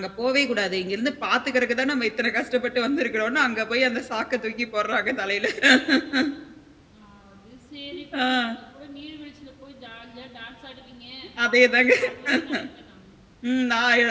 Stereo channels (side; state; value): both; identical; correlation 1.00